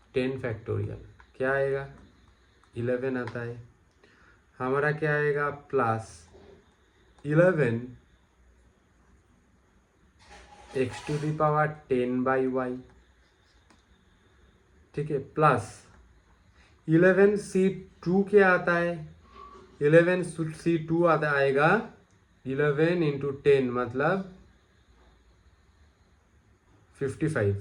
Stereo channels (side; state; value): both; identical; correlation 1.00